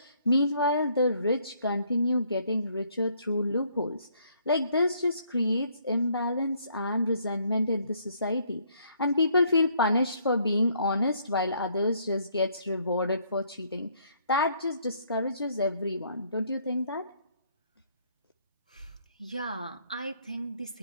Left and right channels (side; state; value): both; inverted; correlation -0.67